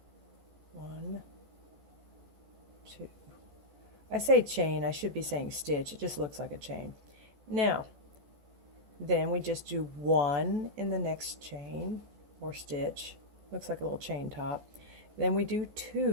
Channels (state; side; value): late; left; 14 ms